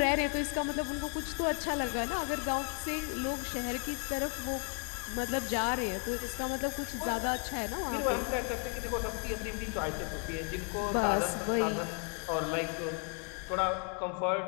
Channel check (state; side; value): quieter; right; 39.7 dB